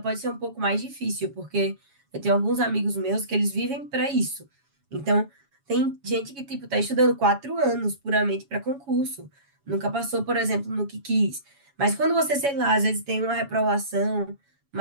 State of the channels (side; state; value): left; late; 7.2 ms